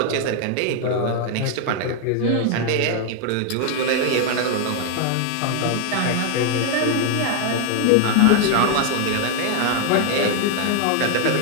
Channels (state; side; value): different; both; correlation 0.00